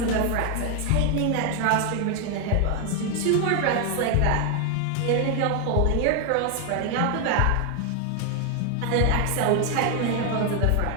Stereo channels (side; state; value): both; different; correlation 0.01